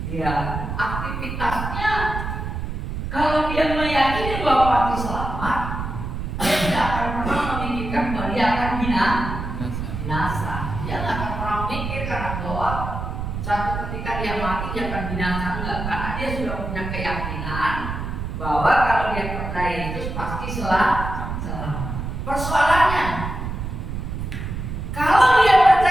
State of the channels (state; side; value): noise; right; rumble, 5 dB below the sound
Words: Ya, aktivitasnya, kalau dia meyakini bahwa pasti selamat, dia tidak akan pernah memikirkan bahwa dia akan binasa. Dia tidak akan pernah memikirkan bahwa satu ketika dia mati dia akan binasa, enggak, karena dia sudah punya keyakinan bahwa kalau dia percaya Yesus pasti selamat. Persoalannya, kalau dia